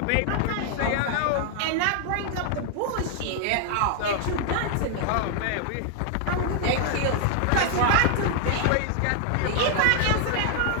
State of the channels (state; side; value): different; both; correlation 0.00